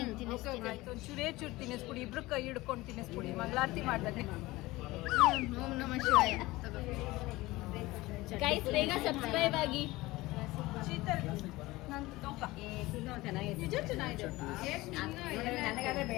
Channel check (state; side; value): quieter; right; 19.7 dB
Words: ತಿನ್ನಿಸ್ತೀನಿ. ಒಂಚೂರೇ ಚೂರು ತಿನ್ನಿಸ್ಬಿಡಿ, ಇಬ್ರು ಕೈ ಹಿಡ್ಕೊಂಡು ತಿನ್ನಿಸ್ಬಿಡಿ, ಮಂಗಳಾರತಿ ಮಾಡ್ದಾನೆ. ಓಂ ನಮಃ ಶಿವಾಯ. ಗೈಸ್ ಬೇಗ ಸಬ್ಸ್ಕ್ರೈಬ್ ಆಗಿ. ಶೀತಲ್ ನಾನು ತೋಕ ನಿಜ ಚೆನ್ನಾಗಿದೆ.